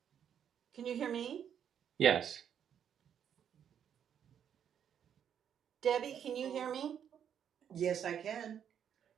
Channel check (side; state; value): left; quieter; 8.7 dB